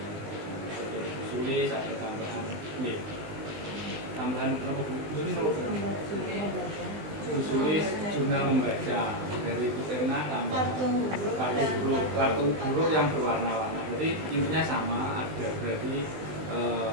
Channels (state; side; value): late; left; 19 ms